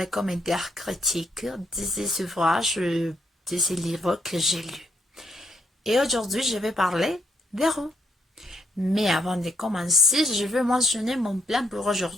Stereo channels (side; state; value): both; normal; correlation 0.75